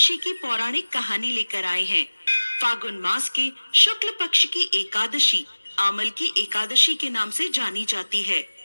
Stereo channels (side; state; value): both; inverted; correlation -1.00